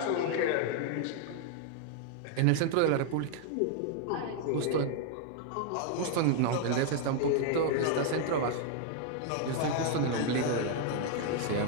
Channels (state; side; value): different; both; correlation 0.00